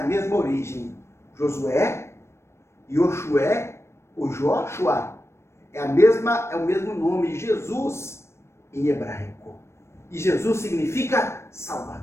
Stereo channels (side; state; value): right; late; 0.13 ms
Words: mesma origem. Josué, Yoshua, o Joshua, é o mesmo nome, Jesus, em hebraico. E Jesus significa